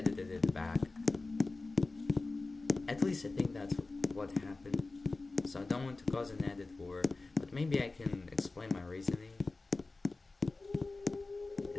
it back. At least I think that's what happened. So I don't want to cause an edit war, but maybe I can explain my reasoning.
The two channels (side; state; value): right; quieter; 3.5 dB